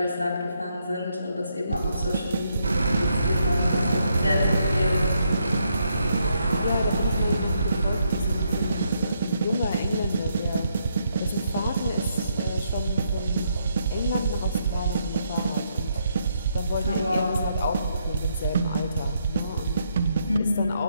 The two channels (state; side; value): inverted; both; correlation -0.76